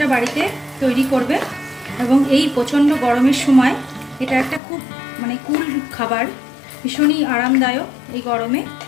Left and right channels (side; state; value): right; drops out; at 4.6 s